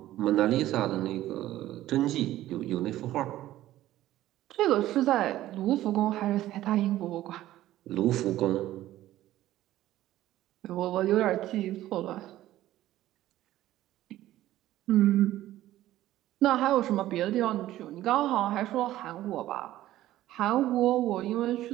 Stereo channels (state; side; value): quieter; left; 14.5 dB